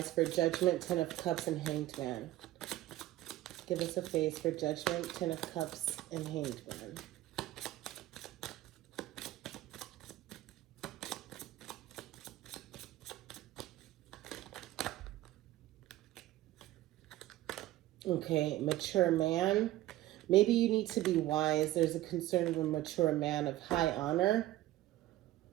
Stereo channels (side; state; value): left; quieter; 15.5 dB